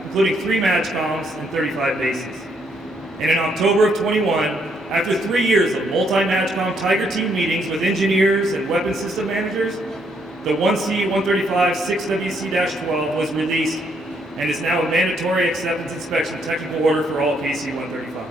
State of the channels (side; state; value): both; normal; correlation 0.72